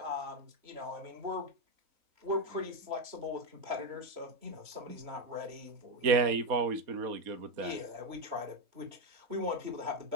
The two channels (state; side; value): late; left; 4.2 ms